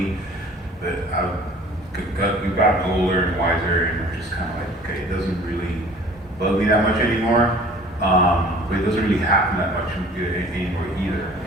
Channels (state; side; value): normal; both; correlation 0.48